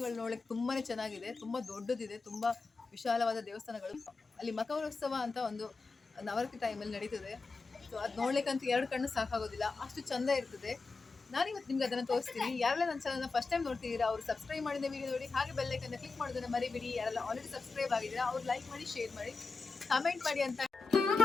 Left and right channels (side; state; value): right; quieter; 4.2 dB